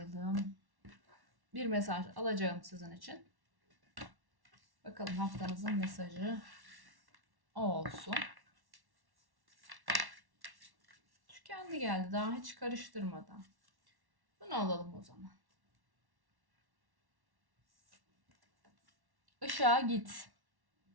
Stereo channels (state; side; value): late; left; 1.1 ms